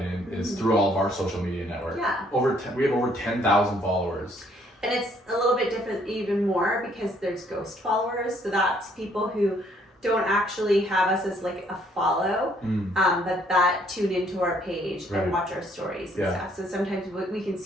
is through all of our social media network. Yeah. We have over 10,000 followers. And it's a little bit different even more because there's ghost followers. So that's people who don't actually have us as like a follow, that tune into our page and watch our stories and stuff. So sometimes we can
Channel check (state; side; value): normal; both; correlation 0.65